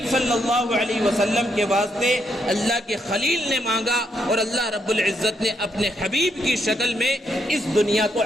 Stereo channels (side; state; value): both; normal; correlation 0.77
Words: صلی اللہ علیہ وسلم کے واسطے اللہ کے خلیل نے مانگا، اور اللہ رب العزت نے اپنے حبیب کی شکل میں اس دنیا کو